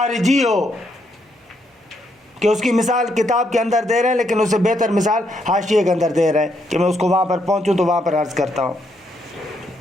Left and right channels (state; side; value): normal; both; correlation 0.76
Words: ہو، کہ اس کی مثال کتاب کے اندر دے رہے ہیں لیکن اس سے بہتر مثال حاشیے کے اندر دے رہے ہیں کہ میں اس کو وہاں پر پہنچوں تو وہاں پر عرض کرتا ہوں.